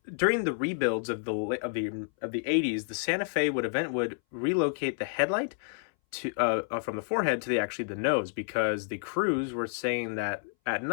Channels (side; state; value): right; silent; 58 dB below the other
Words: during the rebuilds of the 80s, the Santa Fe would relocate the headlight to from the forehead to the nose, because the crews were saying that at